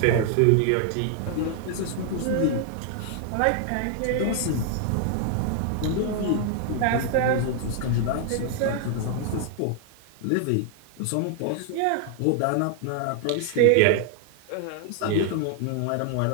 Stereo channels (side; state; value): both; different; correlation 0.00